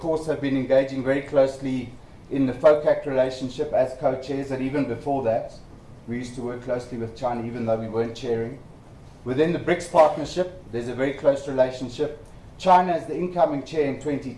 have been engaging very closely in the FOCAC relationship as co-chairs, and even before that, we used to work closely with China even though we weren't chairing. Within the BRICS partnership, there's a very close relationship. China, as the incoming chair in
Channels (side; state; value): both; identical; correlation 1.00